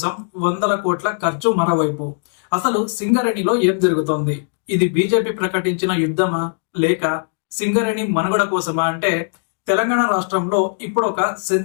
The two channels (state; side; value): silent; right; 62 dB below the other